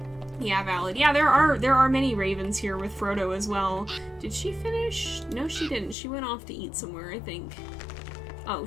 Yeah, valid. Yeah, there are many ravens here with Frodo as well. Did she finish? No, she didn't. She went off to eat somewhere, I think. Oh,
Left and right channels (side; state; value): right; drops out; at 6.0 s